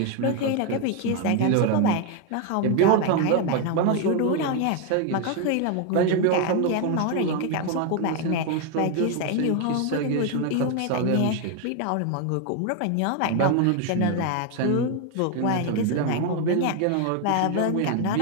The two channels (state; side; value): different; both; correlation 0.01